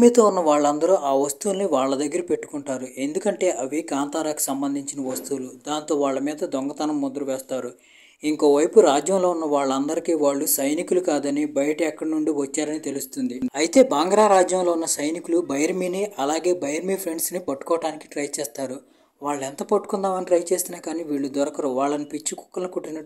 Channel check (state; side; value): identical; both; correlation 1.00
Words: ఉన్న వాళ్ళందరూ ఆ వస్తువుల్ని వాళ్ళ దగ్గర పెట్టుకుంటారు. ఎందుకంటే అవి కాంతారాకు సంబంధించిన వస్తువులు. దాంతో వాళ్ళ మీద దొంగతనం ముద్ర వేస్తారు. ఇంకోవైపు రాజ్యంలో ఉన్న వాళ్ళందరికీ వాళ్ళు సైనికులు కాదని బయట ఎక్కడి నుండి వచ్చారని తెలుస్తుంది. అయితే బాంగ్రా రాజ్యంలో ఉన్న సైనికులు బైరమిని అలాగే బైరమి ఫ్రెండ్స్ని పట్టుకోవడానికి ట్రై చేస్తారు. వాళ్ళు ఎంత పట్టుకుందామని ట్రై చేసినా కానీ వీళ్ళు దొరకరు. వాళ్ళని పిచ్చి కుక్కలను